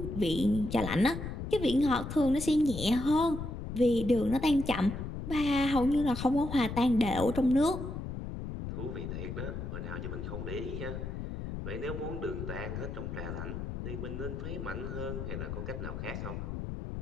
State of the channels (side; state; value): left; noise; rumble, 6 dB below the sound